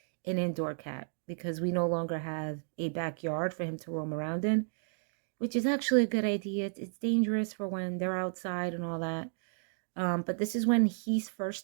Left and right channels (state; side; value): silent; left; digital silence